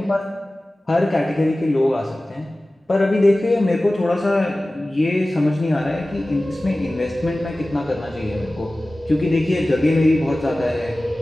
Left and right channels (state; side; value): normal; both; correlation 0.97